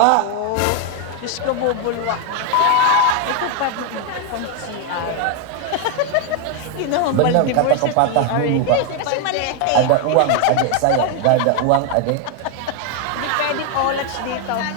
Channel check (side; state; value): both; different; correlation 0.01